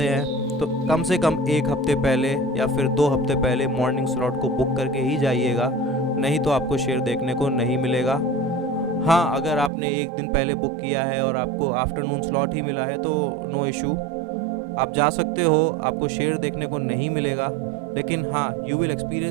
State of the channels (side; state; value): left; drops out; at 9.7 s